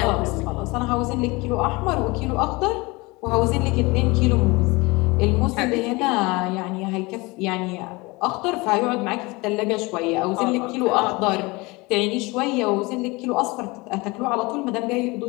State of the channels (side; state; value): right; quieter; 24.4 dB